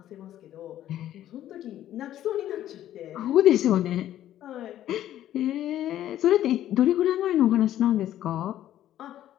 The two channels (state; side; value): quieter; right; 12.3 dB